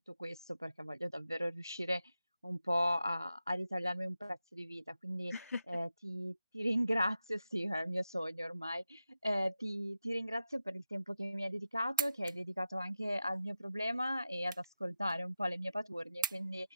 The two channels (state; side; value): inverted; both; correlation -0.89